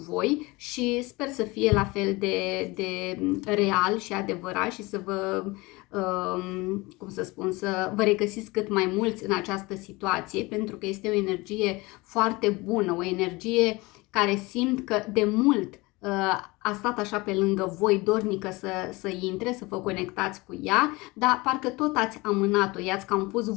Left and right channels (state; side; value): quieter; right; 23.2 dB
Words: și sper să fie la fel de real și adevărat și să vă, cum să spun, să vă regăsiți cât mai mulți în această situație, pentru că este o energie foarte bună, o energie care simt că de mult a stat așa pe lângă voi, dornică să intre, să vă conectați cu ea, dar parcă tot ați amânat-o, i-ați cam pus